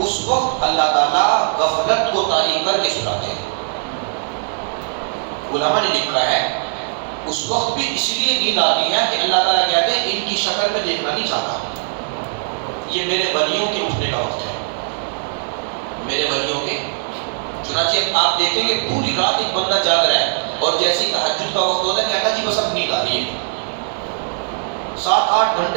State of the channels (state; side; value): silent; left; 66 dB below the other